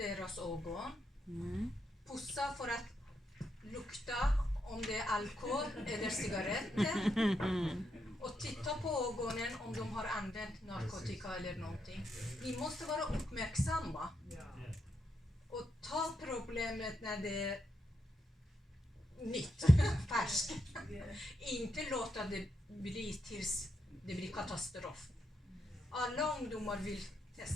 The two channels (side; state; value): both; normal; correlation 0.82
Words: ögon, pussa för att lukta om det är alkohol eller cigaretter och titta på ögonen om de har använt narkotika eller någonting. Vi måste vara uppmärksamma och ta problemet när det är nytt, färskt. Inte låta det bli tills det blir katastrof. Alla ungdomar vill